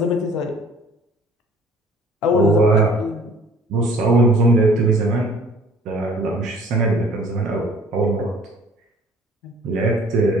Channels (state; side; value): normal; both; correlation 0.52